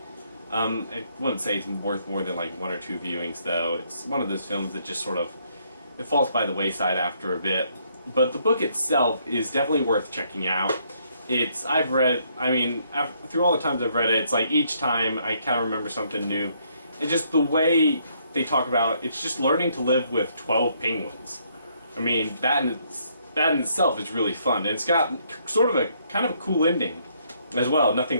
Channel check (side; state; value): both; inverted; correlation -0.70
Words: I wouldn't say it's worth more than like 1 or 2 viewings though. It's one of those films that just it falls by the wayside after a bit. But the book itself is definitely worth checking out. Through all the times I've read it, it's like each time I kind of remember something new. And just the way they talk about it's just learning to live with 12 penguins. I mean, that in itself is really fun. And it's got sort of a kind of a cool ending as well.